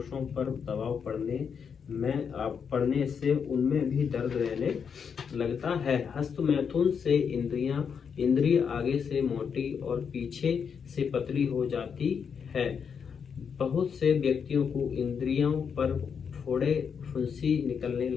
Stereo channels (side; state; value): right; quieter; 6.7 dB